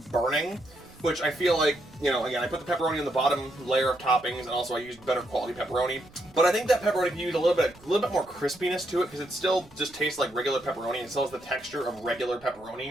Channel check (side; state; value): right; noise; rumble, 26 dB below the sound